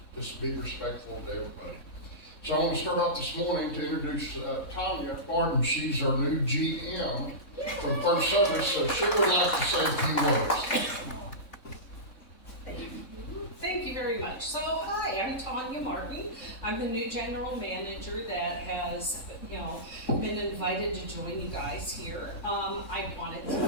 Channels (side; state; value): right; late; 3.6 ms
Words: just be respectful to everybody. So I want to start off this morning to introduce Tanya Barton. She's our new GM from First Service, so she would like to say a few words. Thank you very much. So, hi, I'm Tanya Martin. I'm the new general manager that has, been invited to join you guys here. I wanted to